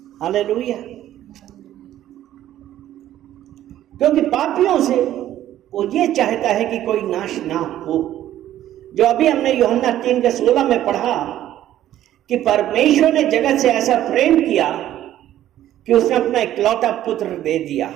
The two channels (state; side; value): quieter; left; 12.6 dB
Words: हालेलुया। क्योंकि पापियों से वो ये चाहता है कि कोई नाश ना हो। जो अभी हमने यूहन्ना 3 के 16 में पढ़ा कि परमेश्वर ने जगत से ऐसा प्रेम किया कि उसने अपना इकलौता पुत्र दे दिया,